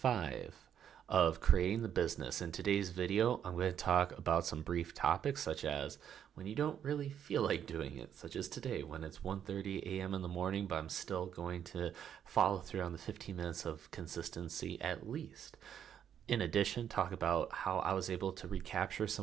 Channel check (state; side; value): quieter; left; 9.2 dB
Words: of creating the business. In today's video, I'm going to talk about some brief topics such as when you don't really feel like doing it, such as today when it's 1:30 a.m. in the morning, but I'm still going to follow through on the 15 minutes of consistency at least. In addition, talk about how I was able to recapture